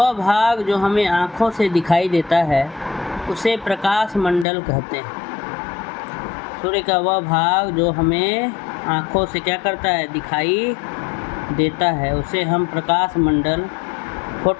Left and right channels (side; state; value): right; drops out; at 4.5 s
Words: भाग जो हमें आँखों से दिखाई देता है उसे प्रकाश मंडल कहते हैं। सूर्य का वह भाग जो हमें आँखों से क्या करता है, दिखाई देता है, उसे हम प्रकाश मंडल,